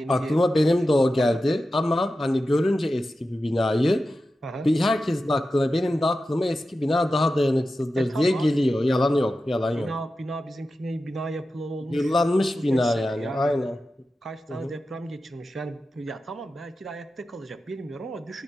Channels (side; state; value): both; normal; correlation 0.92